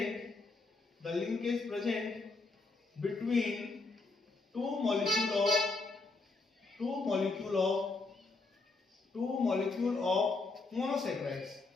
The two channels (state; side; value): quieter; right; 3.7 dB